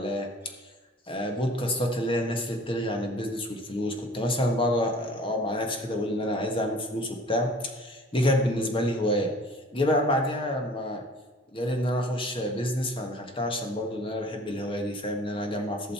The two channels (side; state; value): both; normal; correlation 0.48